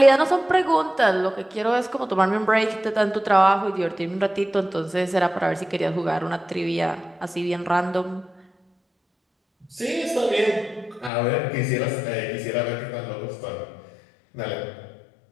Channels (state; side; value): drops out; right; at 11.1 s